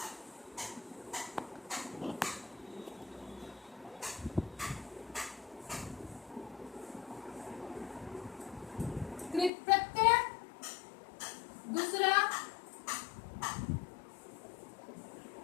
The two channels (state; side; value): drops out; right; at 9.5 s